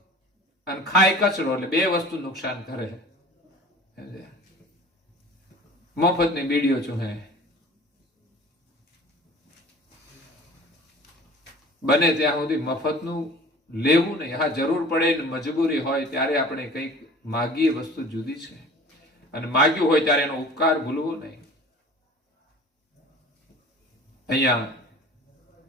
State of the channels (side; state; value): both; normal; correlation 0.44